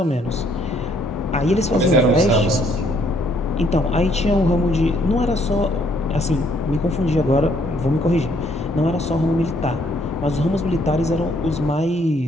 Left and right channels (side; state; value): both; normal; correlation 0.67